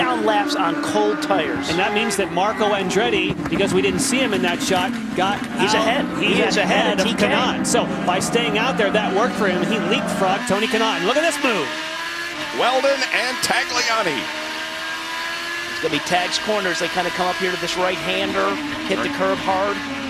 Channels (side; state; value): both; identical; correlation 1.00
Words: laps on cold tires. And that means that Marco Andretti, because we didn't see him in that shot, He's ahead. He is ahead of TK. Kanaan. So by staying out there, that worked for him. He leapfrogged Tony Kanaan. Look at this move. Weldon and Tagliani. It's going to be Tag's corners. They kind of come up here to this right-hander, hit the curb hard.